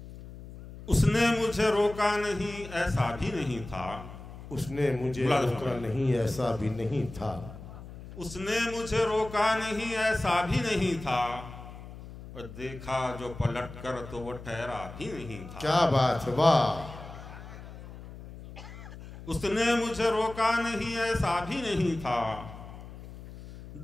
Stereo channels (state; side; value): noise; left; hum, 14 dB below the sound